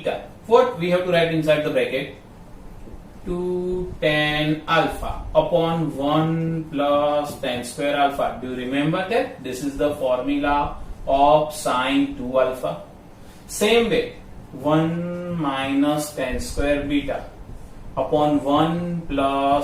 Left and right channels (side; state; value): both; identical; correlation 1.00